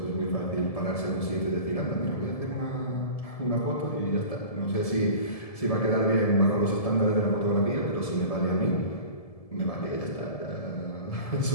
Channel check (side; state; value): right; late; 1.7 ms